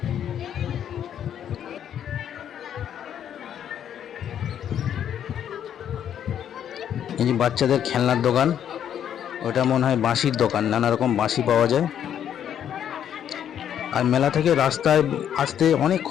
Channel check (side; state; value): right; quieter; 9.6 dB